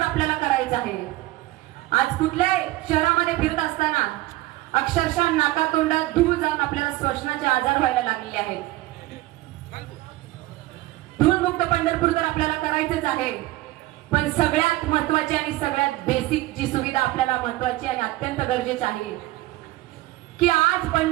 आपल्याला करायचं आहे। आज कुठल्याही शहरामध्ये फिरत असताना अक्षरशः नाकातोंडात धूळ जाऊन आपल्याला श्वसनाचे आजार व्हायला लागलेले आहेत। धूळमुक्त पंढरपूर तर आपल्याला करायचंच आहे, पण सगळ्यात महत्वाची आणि सगळ्यात बेसिक जी सुविधा आपल्याला महत्वाची आणि अत्यंत गरजेची आहे की आज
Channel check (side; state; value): left; quieter; 18.0 dB